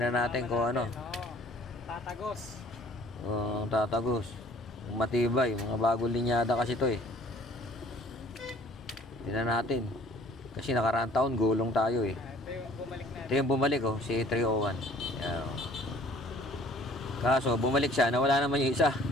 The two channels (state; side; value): normal; both; correlation 0.53